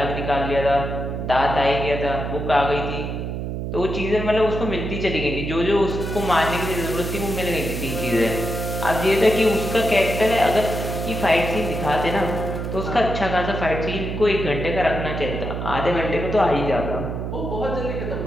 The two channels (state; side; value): noise; right; hum, 4 dB below the sound